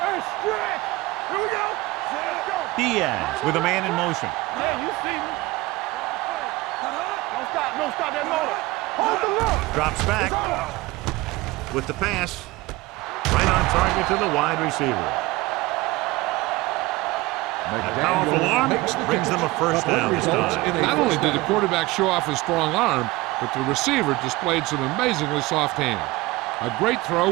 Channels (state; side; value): quieter; left; 20.8 dB